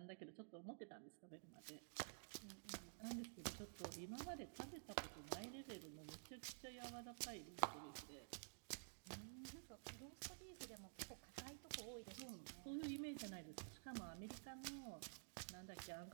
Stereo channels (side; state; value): left; silent; digital silence